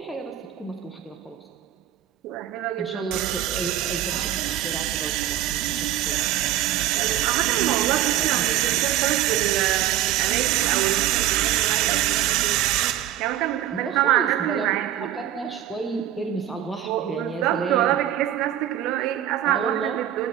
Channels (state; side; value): quieter; left; 11.8 dB